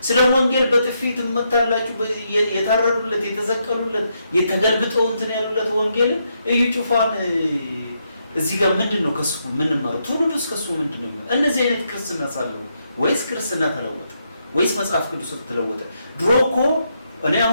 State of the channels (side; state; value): both; inverted; correlation -0.79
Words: ስለ ወንጌል በጥፊ ትመታላችሁ፣ የታረዱለት የተዘቀሉለት የተገልብጠው እንትን ያሉለት ወንጌልን እዩ ጩፋን እዚህ ጋር ምንድነው ከሱ ምንማረው? ትውልዱስ ከሱ ምንድነው? እነዚህ አይነት ክርስትና ሳለው ወይስ ክርስትና ተለወጠ ወይስ መጽሐፍ ቅዱስ ተለወጠ? ድሮ እኮ እኔ